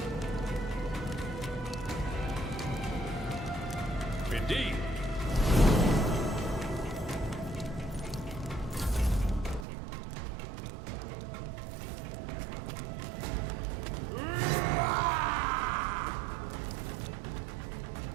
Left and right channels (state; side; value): drops out; left; at 9.7 s